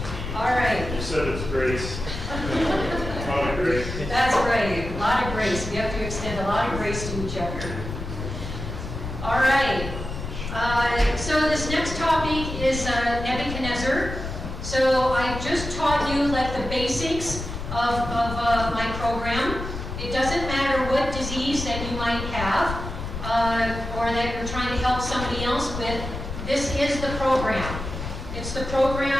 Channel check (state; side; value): noise; left; rumble, 7 dB below the sound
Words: All right. You said it's grace. A lot of grace. That's right, a lot of grace. We have to extend a lot of grace to each other. All right. So this next topic is Nebuchadnezzar. So I just taught you like the basics of my program. It doesn't matter what disease that you might have or that you're trying to help somebody else with. This is the program. It's the